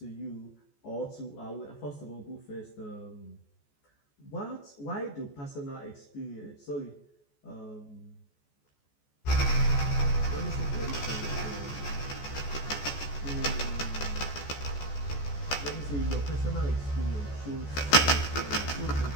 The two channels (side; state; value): right; late; 14 ms